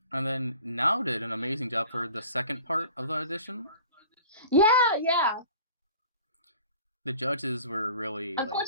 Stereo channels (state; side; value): inverted; both; correlation -0.45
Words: And then Now did an amazing job for the second part of the audition. Yeah. The judges were really.